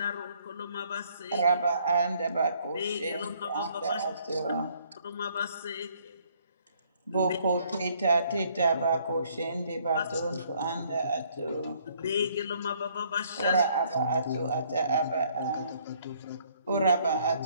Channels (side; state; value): both; inverted; correlation -0.65